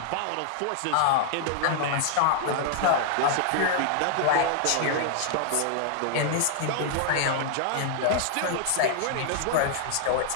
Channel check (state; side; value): different; both; correlation 0.00